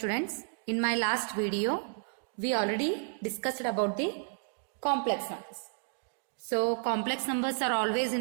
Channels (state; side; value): silent; left; digital silence